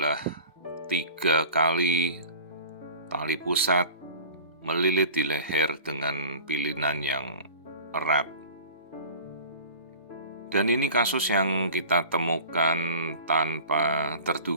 3 kali tali pusat melilit di leher dengan pilihan yang erat. Dan ini kasus yang kita temukan tanpa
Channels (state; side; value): inverted; both; correlation -0.41